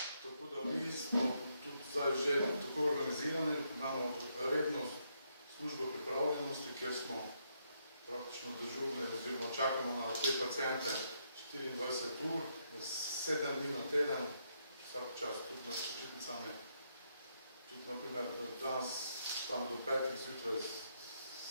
da mi smo tudi zdaj že tako organizirani, imamo redno službo pripravljenosti, kjer smo praktično dežurni oziroma čakamo na te paciente 24 ur, 7 dni na teden, vsak čas, tudi med počitnicami. Tudi, naprimer, danes tam do 5 zjutraj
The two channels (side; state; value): both; inverted; correlation -0.77